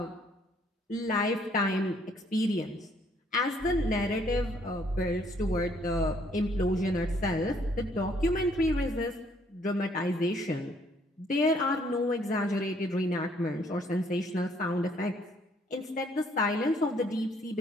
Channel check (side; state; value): both; normal; correlation 0.65